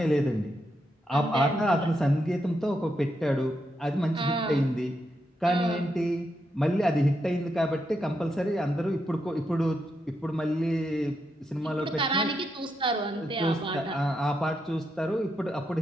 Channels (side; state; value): both; normal; correlation 0.82